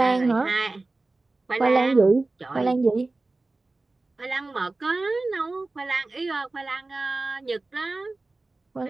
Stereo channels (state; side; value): quieter; left; 3.2 dB